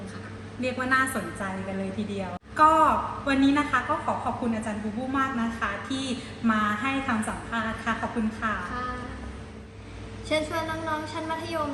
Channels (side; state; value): both; identical; correlation 1.00